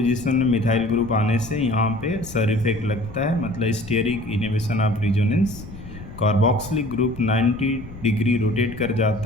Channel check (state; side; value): noise; left; rumble, 14 dB below the sound